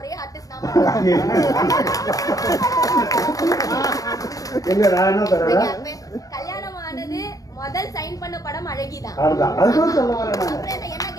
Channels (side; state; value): right; late; 0.17 ms